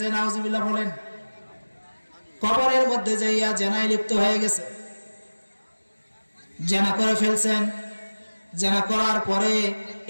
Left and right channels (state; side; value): inverted; both; correlation -1.00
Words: নাউজুবিল্লাহ বলেন। কবরের মধ্যে যাইয়া জেনায় লিপ্ত হয়ে গেছে, জেনা করে ফেলছেন। জেনা করার পরে